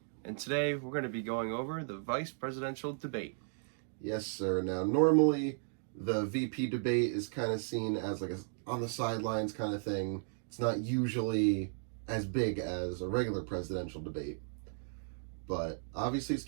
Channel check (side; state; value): left; silent; digital silence